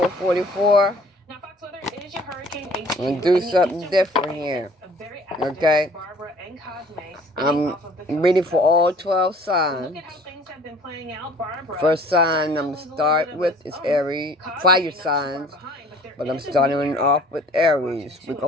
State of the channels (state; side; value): normal; both; correlation 0.51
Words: Now, Fox weather is your hurricane HQ. I'm gonna do something different here. Okay. I'm reading for all 12 signs. First sign I'm gonna start with is Aries, fire signs. But I'm starting off with Aries. We're gonna